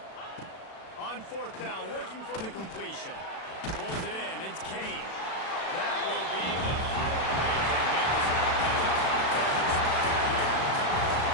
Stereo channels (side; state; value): right; late; 36 ms